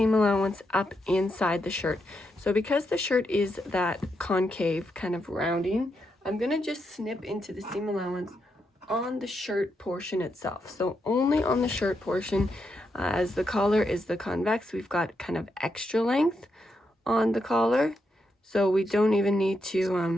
allowance up inside the shirt. So because the shirt is that concave kind of rounding, I'm going to just snip into the seam allowance on the shirt portion itself. So only on the shirt portion. As the collar is the convex, we've got kind of extra length on the collar, so we don't even need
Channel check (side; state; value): both; normal; correlation 0.82